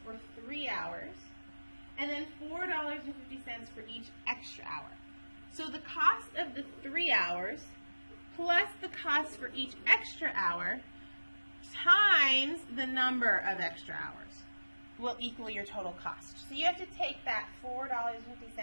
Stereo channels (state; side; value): inverted; both; correlation -1.00